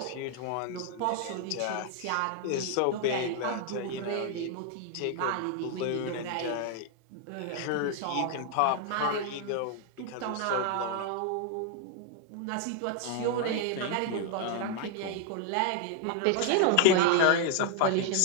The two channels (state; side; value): different; both; correlation 0.00